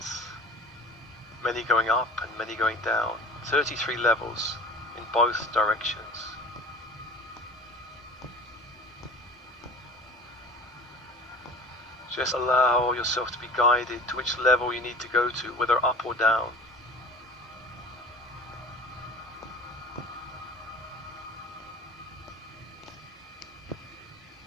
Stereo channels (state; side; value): normal; both; correlation 0.39